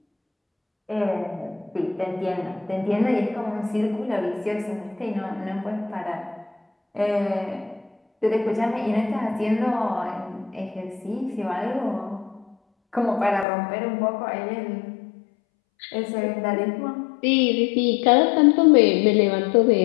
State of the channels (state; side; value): drops out; right; at 13.5 s